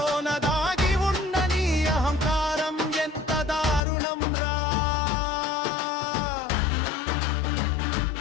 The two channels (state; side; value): drops out; right; at 3.8 s